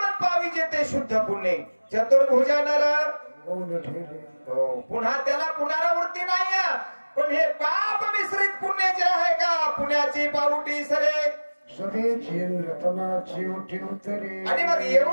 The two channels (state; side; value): inverted; both; correlation -1.00